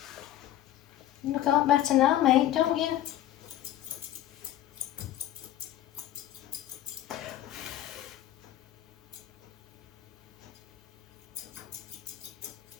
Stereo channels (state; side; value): quieter; right; 12.8 dB